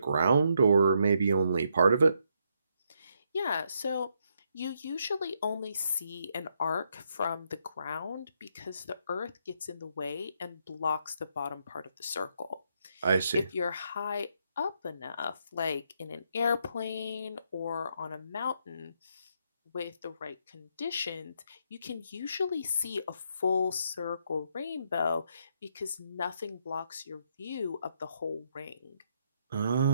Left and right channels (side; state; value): both; inverted; correlation -0.76